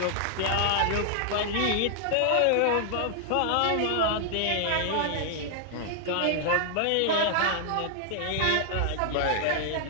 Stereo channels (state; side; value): different; both; correlation 0.00